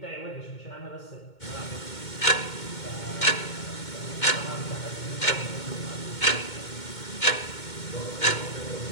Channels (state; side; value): late; right; 2.2 ms